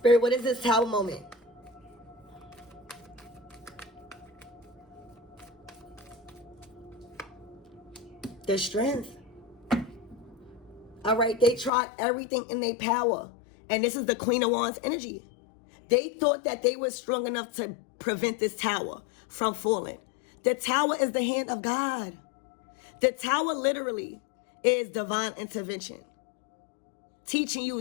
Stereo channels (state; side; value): drops out; right; at 11.7 s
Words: what is this Tower moment? The strength. All right, they tried everything in their power. And this is the Queen of Wands energy. They thought that they were strong enough to prevent this tower from falling. The tower is the hand of God. The tower literally is divine intervention, teaching